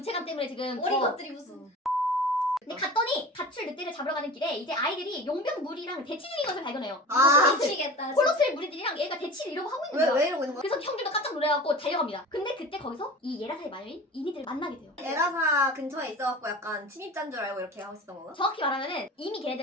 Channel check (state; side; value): normal; both; correlation 0.37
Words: 때문에 지금 어린 더 것들이 무슨 근데 갔더니 가출 늑대를 잡으러 가는 길에 이제 아이들이 용병 무리랑 대치 중인 것을 발견해요. 아 미치겠다 홀로트의 무리들이랑 얘가 대치를 이러고 하고 있는 거야. 왜 이러고 있는 거야? 그래서 형들도 깜짝 놀래갖고 달려갑니다. 근데 그때 거기서 이 예라사의 마녀인 이니들을 만나게 돼요. 에라사 근처에 있어갖고 약간 침입자인 줄 알고 이렇게 하고 있었던 건가? 정확히 말하면은 이미